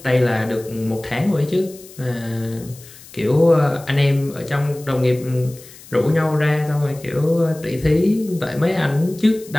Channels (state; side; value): noise; left; hiss, 20 dB below the sound